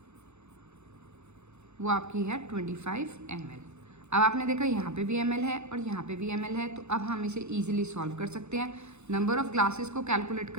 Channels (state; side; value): late; left; 0.82 ms